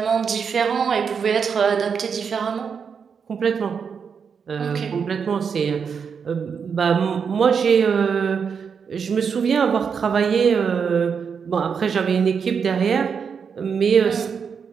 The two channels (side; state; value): left; quieter; 6.4 dB